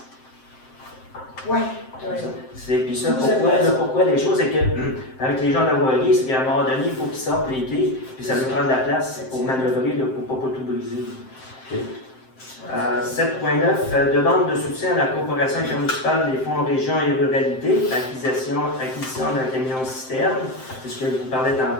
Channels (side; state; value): right; late; 7.7 ms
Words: Ouais, tu as raison. Puis ça, pourquoi les choses, c'est que avec les gens de la voirie, c'est qu'à un moment donné, il faut qu'ils sortent les quais, puis ça nous prend de la place pour manœuvrer, là, pour ne pas tout briser. 7.9, demande de soutien à la coopération intermunicipale des fonds région et ruralité, acquisition d'un camion citerne, c'est ce que je vous parlais